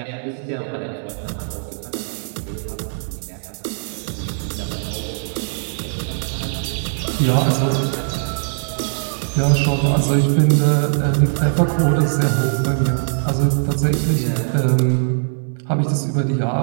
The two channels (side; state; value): left; silent; 65 dB below the other